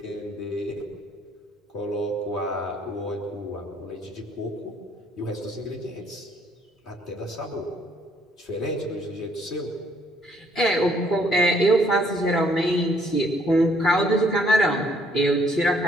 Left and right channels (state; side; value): normal; both; correlation 0.65